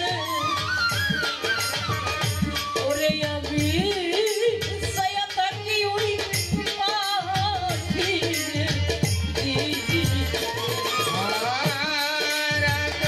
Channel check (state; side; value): identical; both; correlation 1.00